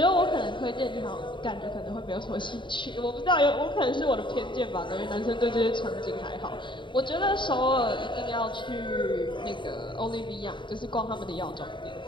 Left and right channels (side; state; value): right; late; 0.23 ms